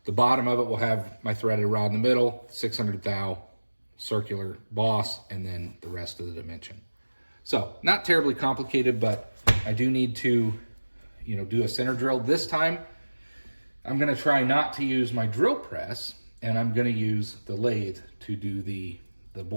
the bottom of it will have my threaded rod in the middle, 600 thou circular boss, and then the rest of the dimension. So not terribly complicated, but I do need to, do a center drill. This time, I'm going to try not to use my drill press, and I'm going to use the lathe to do the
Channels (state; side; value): inverted; both; correlation -1.00